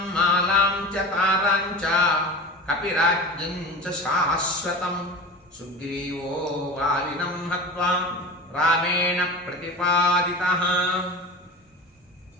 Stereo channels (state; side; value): normal; both; correlation 0.31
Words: మాలాం చ తారాం చ కపిరాజ్యం చ శాశ్వతం సుగ్రీవో వాలినం హత్వా రామేణ ప్రతిపాదితః.